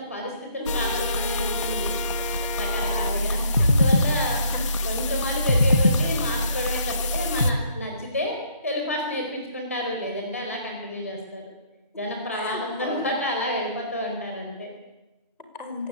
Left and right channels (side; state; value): both; inverted; correlation -0.63